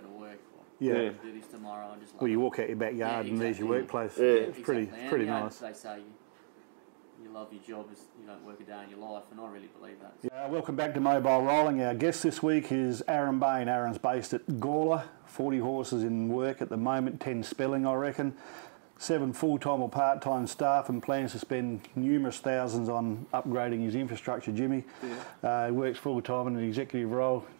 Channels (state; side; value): silent; left; digital silence